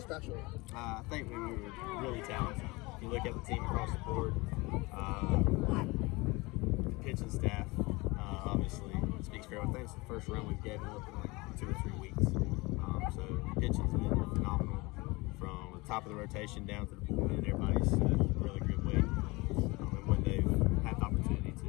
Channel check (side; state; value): right; quieter; 24.0 dB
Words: I think we were really talented. If you look at the team across the board, the pitching staff, obviously speaks for everything. It's the first run we've given up in like 2 or 3 weeks. So pitching's been phenomenal from the top of the rotation down to the bullpen. Everybody's really good way and when they've had the opportunity to.